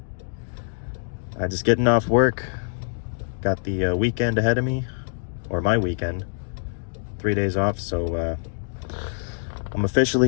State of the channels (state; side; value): silent; right; digital silence